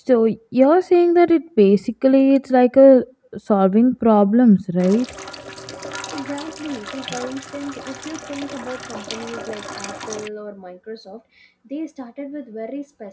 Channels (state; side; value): identical; both; correlation 1.00